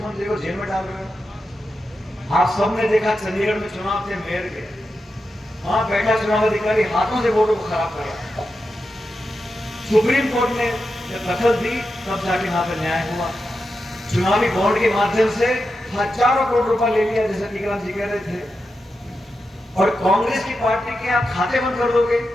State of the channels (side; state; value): both; normal; correlation 0.89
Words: को जेल में डाल रहे हो। आप सबने देखा चंडीगढ़ में चुनाव थे मेयर के, वहां बैठा चुनाव अधिकारी हाथों से वोटों को खराब करा। सुप्रीम कोर्ट ने जब दखल दी तब जाके वहां पर न्याय हुआ। चुनावी बॉन्ड के माध्यम से हजारों करोड़ रुपया ले लिया, जैसे टीकाराम जी कह रहे थे, और कांग्रेस की पार्टी के आप खाते बंद कर दोगे।